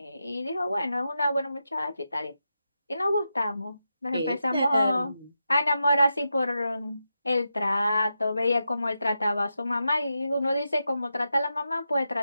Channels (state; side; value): inverted; both; correlation -0.88